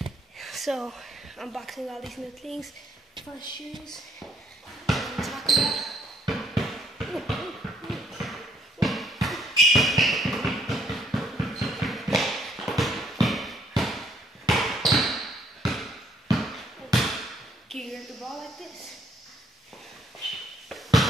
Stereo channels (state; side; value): normal; both; correlation 0.68